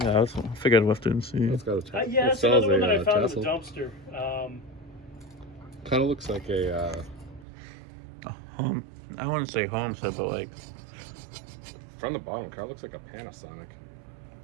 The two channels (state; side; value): drops out; left; at 7.5 s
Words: Yeah, I figured I'd have to see. It's got a Yeah, that's another one that I found in the dumpster. Kind of looks like a home. I wouldn't say homestead, but like. from the bottom. Kind of looks like a Panasonic.